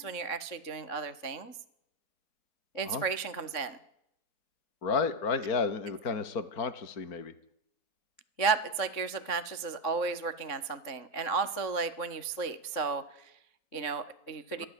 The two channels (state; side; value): late; right; 3.7 ms